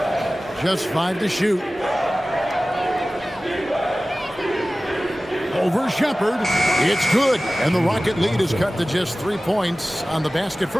Just 5 to shoot. Over Shepherd. It's good. And the Rocket lead is cut to just 3 points on the basket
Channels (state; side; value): normal; both; correlation 0.97